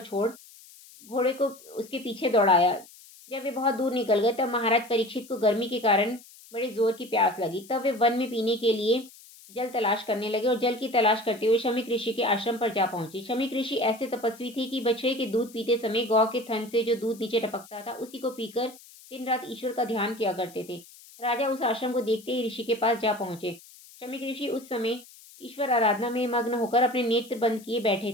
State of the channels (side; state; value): left; noise; hiss, 22 dB below the sound